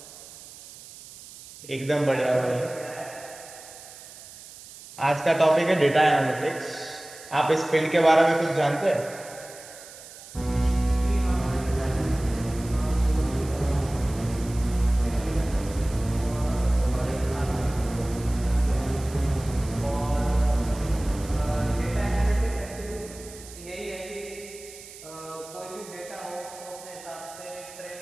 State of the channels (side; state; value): right; noise; hiss, 17 dB below the sound